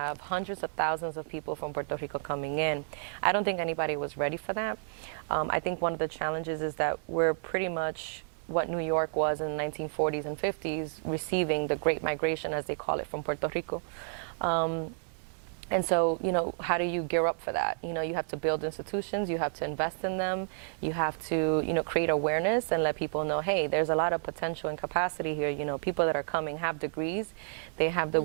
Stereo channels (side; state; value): left; silent; digital silence